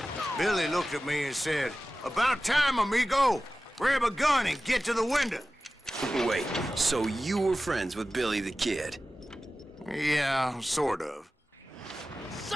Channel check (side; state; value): both; normal; correlation 0.95